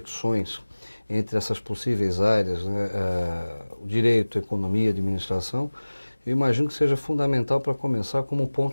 entre essas possíveis áreas, né, o direito, a economia, a administração. Eu imagino que seja fundamental para começar como um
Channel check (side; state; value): both; inverted; correlation -1.00